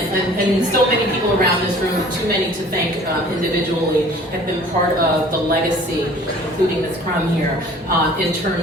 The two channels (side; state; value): both; normal; correlation 0.50